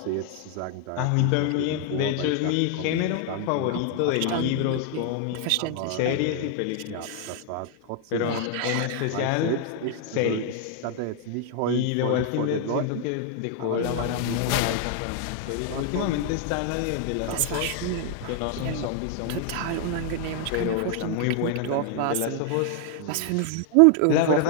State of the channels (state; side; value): different; both; correlation 0.00